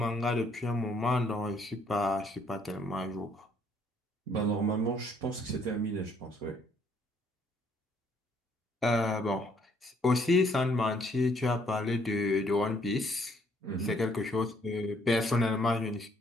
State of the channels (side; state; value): both; normal; correlation 0.66